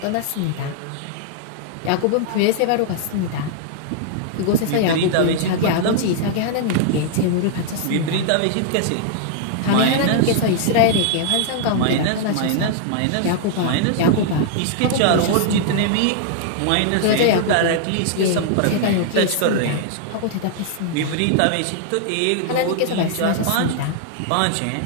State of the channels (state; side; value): different; both; correlation -0.01